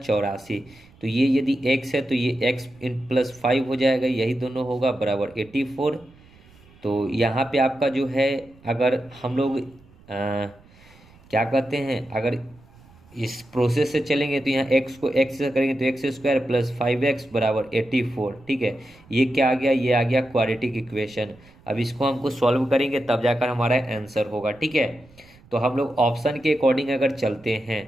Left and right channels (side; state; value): right; noise; rumble, 26 dB below the sound